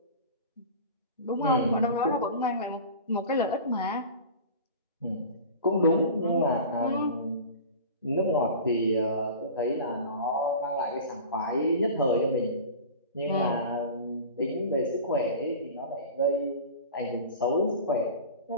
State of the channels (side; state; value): both; inverted; correlation -0.35